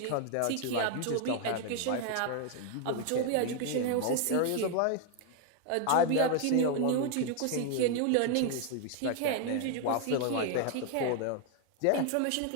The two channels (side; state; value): both; different; correlation 0.01